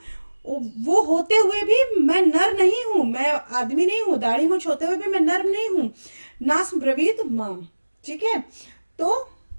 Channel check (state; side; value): inverted; both; correlation -1.00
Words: वो होते हुए भी मैं नर नहीं हूं, मैं आदमी नहीं हूं, दाढ़ी मूछ होते हुए भी मैं नर नहीं हूं। नास ब्रवीत माम, ठीक है। तो